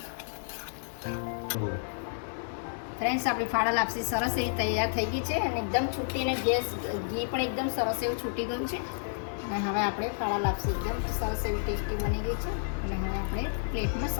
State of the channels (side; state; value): right; silent; 57 dB below the other